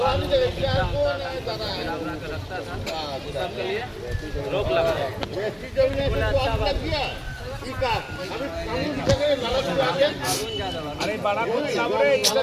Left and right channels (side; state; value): both; identical; correlation 1.00